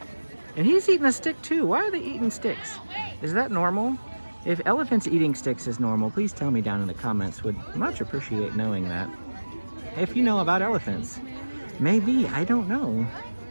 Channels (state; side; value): inverted; both; correlation -1.00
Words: And he's eating a stick too. Why are they eating sticks? Is that normal? If elephants eating sticks is normal, please tell me down in the comments. Would much appreciate knowing that. If you know about elephants. Maybe, I don't know.